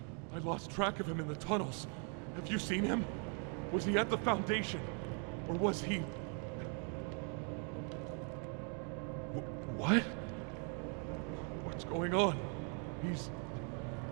I lost track of him in the tunnels. Have you seen him? Was he at the Foundation? Or was he... What? What's going on?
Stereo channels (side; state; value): left; quieter; 39.6 dB